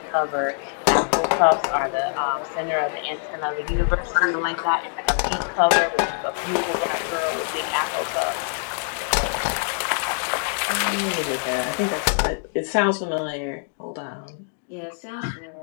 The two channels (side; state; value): right; silent; 59 dB below the other